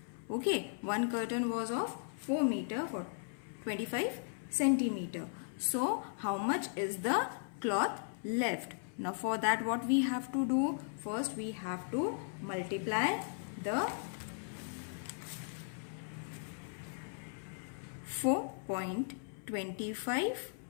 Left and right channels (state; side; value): silent; right; 53 dB below the other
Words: Okay, 1 curtain was of 4 meter for 25 centimeter. So how much is the cloth left? Now for that, what we have to do? First we have to multiply the 4.25